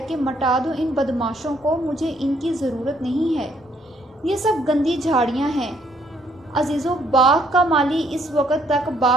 کہ مٹا دو ان بدماشوں کو، مجھے ان کی ضرورت نہیں ہے۔ یہ سب گندی جھاڑیاں ہیں۔ عزیزوں، باغ کا مالی اس وقت تک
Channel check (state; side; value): normal; both; correlation 0.68